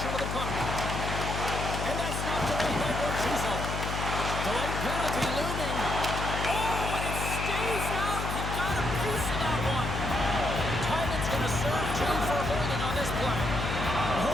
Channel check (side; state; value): left; noise; hum, 3 dB below the sound